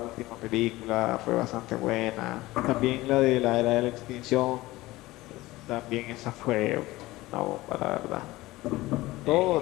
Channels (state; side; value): quieter; right; 18.7 dB